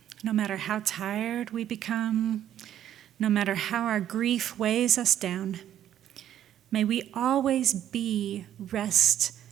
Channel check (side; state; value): left; quieter; 11.0 dB